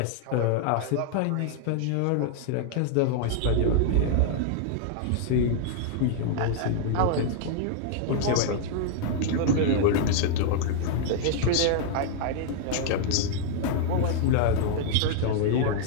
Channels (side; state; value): both; different; correlation 0.00